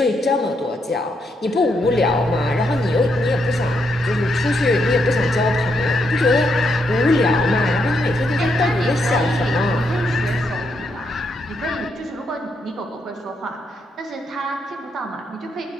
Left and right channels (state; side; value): normal; both; correlation 0.78